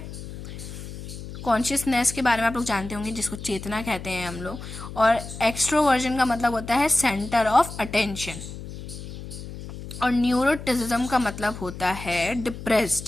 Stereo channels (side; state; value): left; noise; hum, 11 dB below the sound